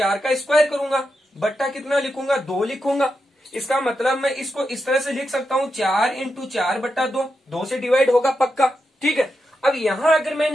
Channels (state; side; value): normal; both; correlation 0.87